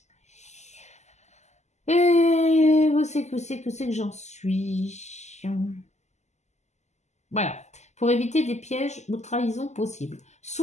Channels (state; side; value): late; right; 0.33 ms